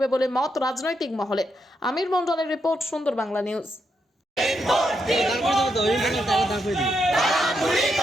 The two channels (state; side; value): normal; both; correlation 0.81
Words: বলে মত রাজনৈতিক মহলে। আমির মন্ডলের রিপোর্ট, সুন্দর বাংলা নিউজ।